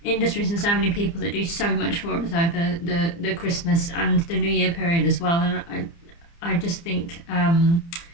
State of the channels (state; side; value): late; right; 29 ms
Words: industries and so many people that do so much for us over the Christmas and the New Year period as well. And I just think I